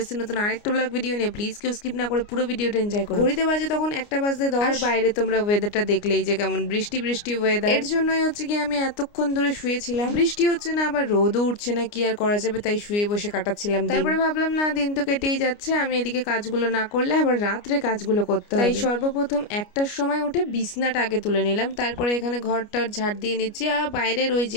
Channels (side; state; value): right; late; 29 ms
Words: এসেছি নতুন আরেকটা ব্লগ ভিডিও নিয়ে। প্লিজ কেউ স্কিপ না করে পুরো ভিডিওটা এনজয় করো। ঘড়িতে বাজে তখন 1:10 আর বাইরে তোমরা ওয়েদারটা দেখলেই যে কেমন বৃষ্টি বৃষ্টি ওয়েদার। এর জন্যই হচ্ছে কি আমি এতক্ষণ ধরে শুয়েছিলাম। বৃষ্টি হচ্ছে না, আবার রোদও উঠছে না, কি আর করা যাবে, তাই শুয়ে বসে কাটাচ্ছিলাম। তারপরে ভাবলাম না, দিন তো কেটেই যাচ্ছে, আমি এদিকে কাজগুলো না করলে আবার রাত্রে কাজগুলো করতে হবে। তাই সর্বপ্রথম 1টার সময় উঠে বিছনাটা আগে তুলে নিলাম। তারপরে এখানে ঘরটার ঝাড় দিয়ে নিচ্ছি। আর বাইরের ওই